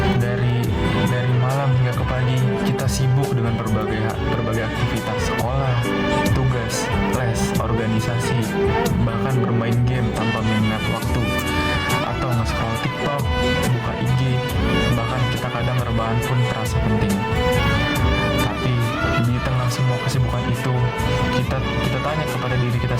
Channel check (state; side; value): identical; both; correlation 1.00